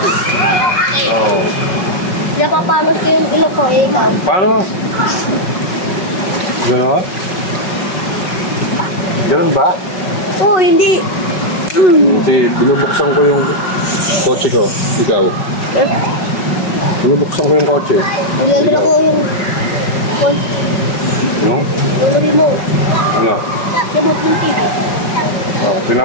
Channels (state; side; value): late; right; 5.4 ms